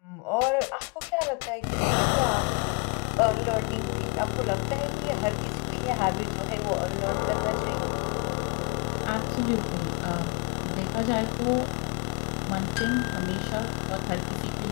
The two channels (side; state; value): right; quieter; 32.9 dB